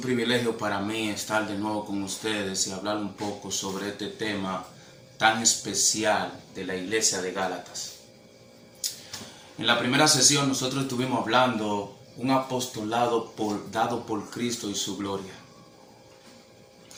para mí estar de nuevo con ustedes y hablar un poco sobre este tema tan especial de la iglesia de Gálatas. En la primera sesión nosotros estuvimos hablando un apostolado dado por Cristo y su gloria.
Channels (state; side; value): identical; both; correlation 1.00